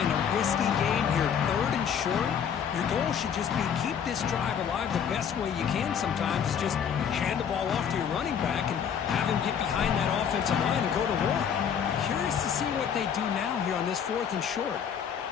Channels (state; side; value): quieter; right; 7.9 dB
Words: a risky game here, 3rd and short. Your goal should just be keep this drive alive the best way you can sometimes. Is just hand the ball off to your running back and have him get behind that offensive line and go to work. Curious to see what they do now here on this 4th and short.